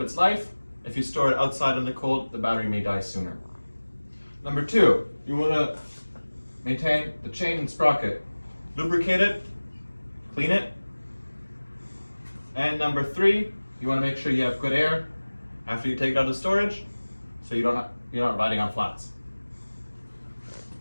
its life. If you store it outside in the cold, the battery may die sooner. Number 2, you want to maintain the chain and sprocket. Lubricate it, clean it. And number 3, you want to make sure you have good air after you take it out of storage, so you're not riding on flats.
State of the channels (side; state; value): both; inverted; correlation -1.00